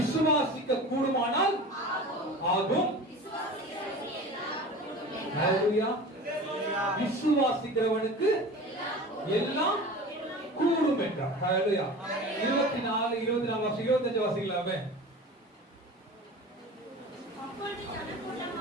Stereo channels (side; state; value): both; normal; correlation 0.36